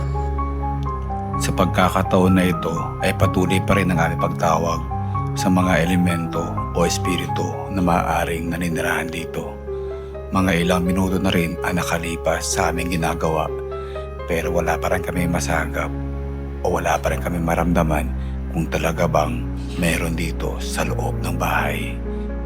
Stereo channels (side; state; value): both; identical; correlation 1.00